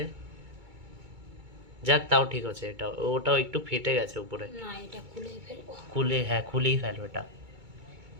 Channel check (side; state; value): left; late; 2.2 ms